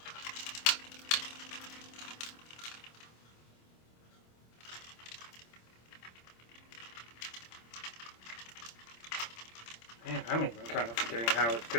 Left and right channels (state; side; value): late; right; 26 ms